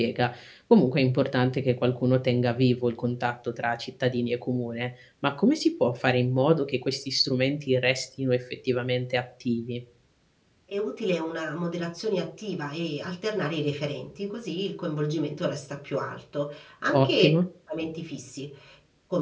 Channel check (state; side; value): identical; both; correlation 1.00